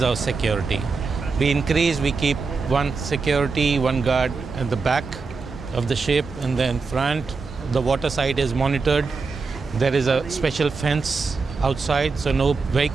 our security. We keep one security, one guard at the back of the ship, and then front. The water side is monitored. There is a special fence outside, so no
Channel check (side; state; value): left; quieter; 4.5 dB